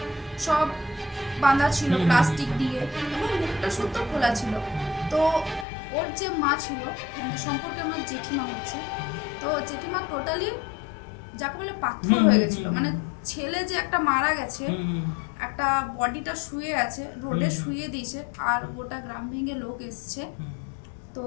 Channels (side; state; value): right; drops out; at 5.7 s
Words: সব বাঁধা ছিল প্লাস্টিক দিয়ে এবং মুখটা শুদ্ধ খোলা ছিল। তো ওর যে মা ছিল, মানে সম্পর্কে আমার জেঠিমা হচ্ছে, তো জেঠিমা টোটালি যাকে বলে পাথর হয়ে গেছিল। মানে ছেলে যে একটা মারা গেছে, একটা বডিটা শুয়ে আছে, রোডে শুয়ে দিয়েছে, আর গোটা গ্রাম ভেঙে লোক এসছে। তো